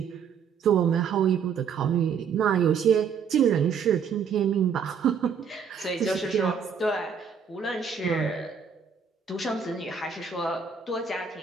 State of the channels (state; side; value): quieter; left; 6.7 dB